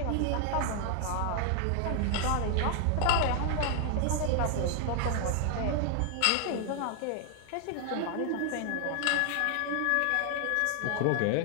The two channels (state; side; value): different; both; correlation 0.00